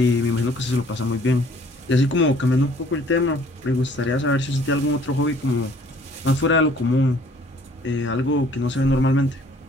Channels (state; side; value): normal; both; correlation 0.57